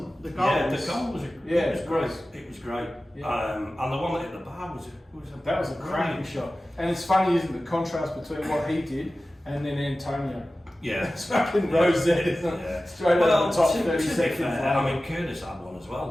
The goal the goal was great. It was great. And the one that hit the bar was a cracking shot. And it's funny, isn't it, the contrast between what he did and then Antonio. It's fucking rosette, isn't it? Straight over the top, 30 seconds. I mean, Curtis had one as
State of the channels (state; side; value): normal; both; correlation 0.96